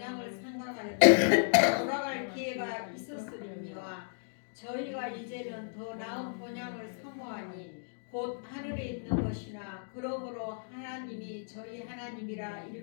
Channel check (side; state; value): right; silent; digital silence